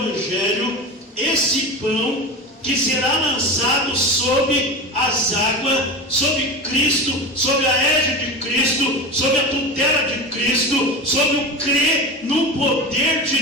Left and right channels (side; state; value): both; normal; correlation 0.26